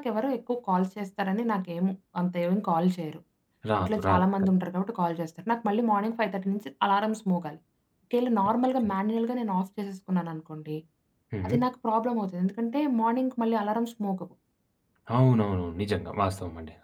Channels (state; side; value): identical; both; correlation 1.00